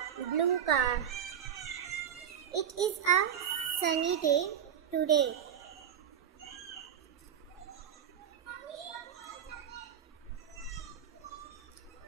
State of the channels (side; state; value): left; quieter; 8.8 dB